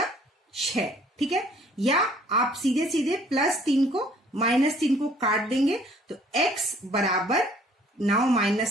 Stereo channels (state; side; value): normal; both; correlation 0.58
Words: 6, ठीक है। या आप सीधे सीधे +3 को -3 को काट देंगे तो x बराबर 9